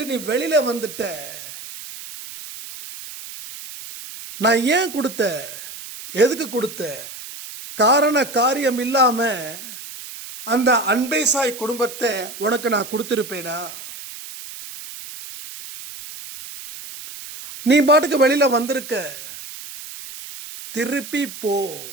நீ வெளியில வந்துட்ட. நான் ஏன் கொடுத்த, எதுக்கு கொடுத்த, காரண காரியம் இல்லாம அந்த அன்பை சாய் குடும்பத்தை உனக்கு நான் கொடுத்துருப்பேனா? நீ பாட்டுக்கு வெளியில வந்திருக்க, திருப்பி போ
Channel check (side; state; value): right; noise; hiss, 13 dB below the sound